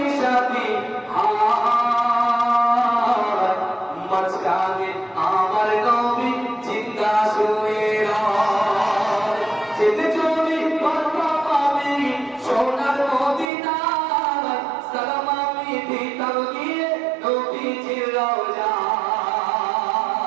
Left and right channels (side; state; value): left; drops out; at 13.5 s